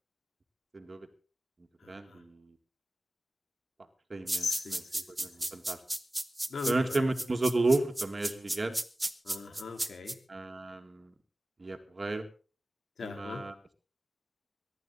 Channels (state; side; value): normal; both; correlation 0.96